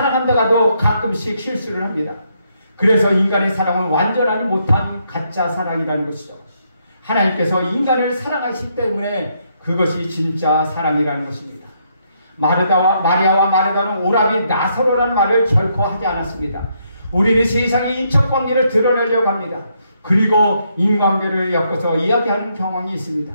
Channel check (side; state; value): both; inverted; correlation -0.75